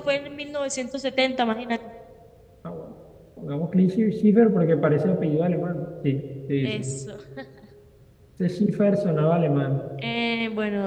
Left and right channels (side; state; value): both; identical; correlation 1.00